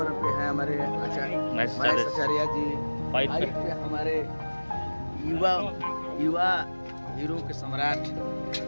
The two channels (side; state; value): both; inverted; correlation -1.00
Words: पे हैं हमारे महेश आचार्य जी। फाइट पे हमारे युवा हीरो के सम्राट